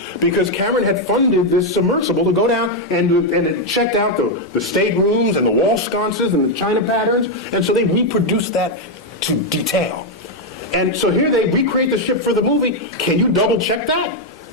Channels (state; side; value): normal; both; correlation 0.02